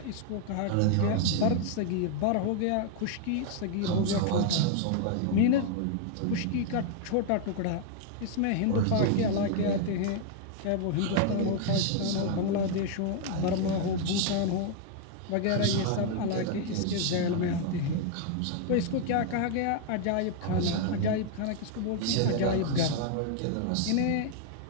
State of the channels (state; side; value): different; both; correlation 0.00